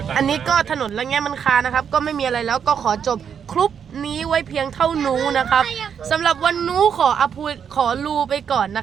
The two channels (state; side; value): quieter; left; 7.6 dB